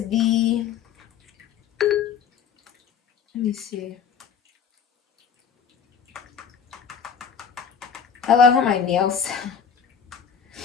let me see. I love how my nails.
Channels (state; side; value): quieter; right; 7.2 dB